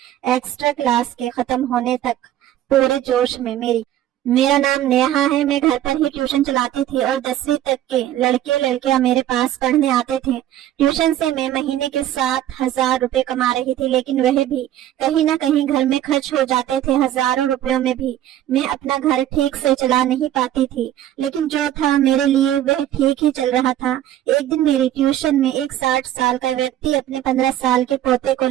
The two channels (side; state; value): left; quieter; 12.3 dB